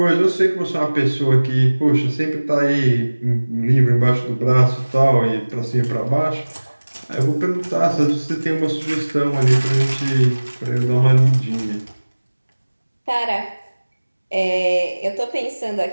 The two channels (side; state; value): both; inverted; correlation -1.00